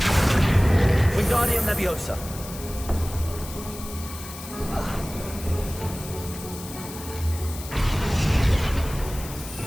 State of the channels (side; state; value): left; noise; hiss, 13 dB below the sound